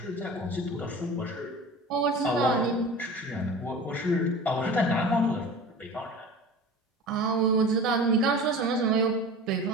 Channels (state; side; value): normal; both; correlation 0.37